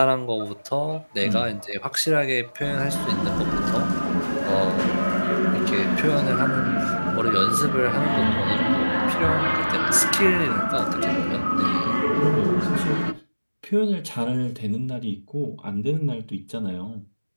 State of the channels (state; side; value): inverted; both; correlation -1.00